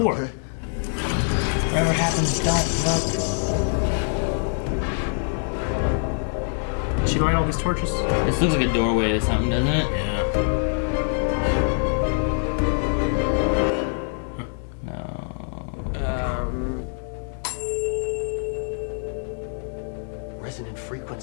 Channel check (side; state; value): right; silent; 62 dB below the other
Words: Okay. Whatever happens, don't look. Did she light all these torches? This looks like a doorway to something, doesn't it? Yeah. No. Resonant